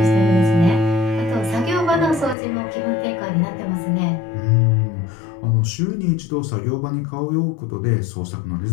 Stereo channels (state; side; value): drops out; right; at 2.4 s